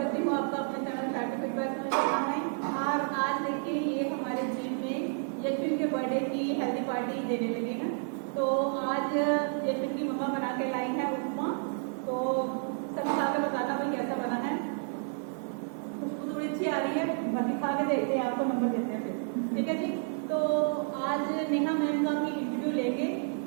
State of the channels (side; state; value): left; silent; 57 dB below the other